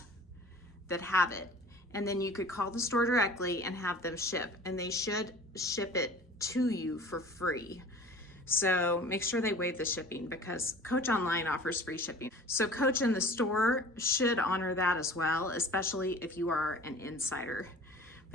that have it. And then you could call the store directly and have them ship, and they should ship it to you for free. So make sure they waive the shipping, because Coach Online offers free shipping. So Coach in the store should honor that as well, especially if you are an insider.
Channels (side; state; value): both; normal; correlation 0.43